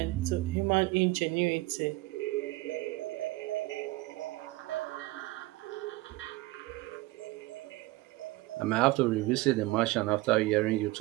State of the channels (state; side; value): quieter; left; 20.4 dB